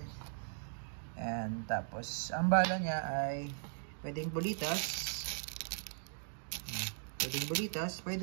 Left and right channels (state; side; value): silent; left; digital silence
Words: And tapos, ang bala niya ay pwedeng bulitas. Pwedeng bulitas,